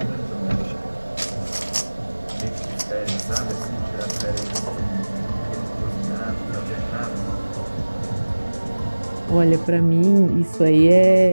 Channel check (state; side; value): inverted; both; correlation -1.00